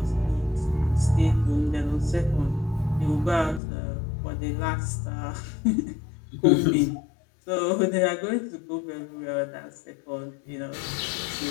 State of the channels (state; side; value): drops out; right; at 3.6 s